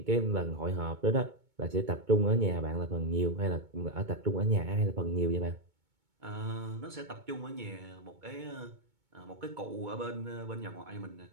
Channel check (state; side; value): late; left; 2.2 ms